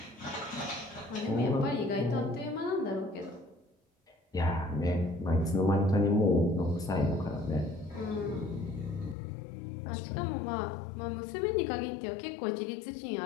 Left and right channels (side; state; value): right; drops out; at 9.2 s